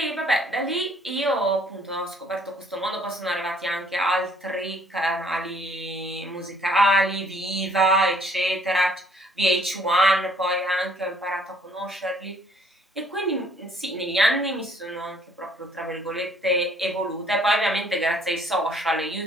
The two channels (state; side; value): normal; both; correlation 0.61